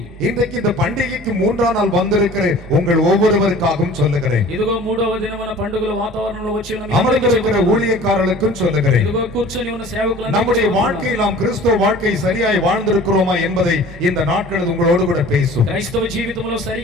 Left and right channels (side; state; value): both; normal; correlation 0.45